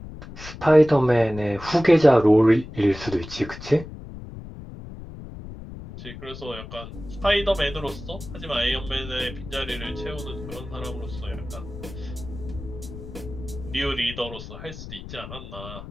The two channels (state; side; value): noise; left; rumble, 12 dB below the sound